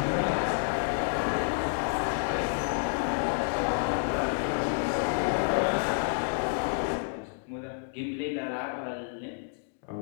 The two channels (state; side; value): silent; right; digital silence